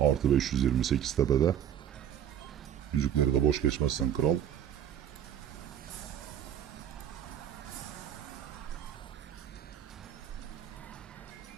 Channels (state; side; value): quieter; left; 9.8 dB